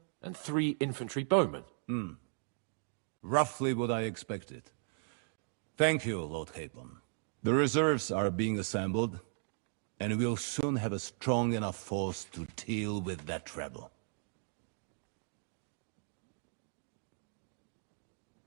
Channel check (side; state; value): left; silent; digital silence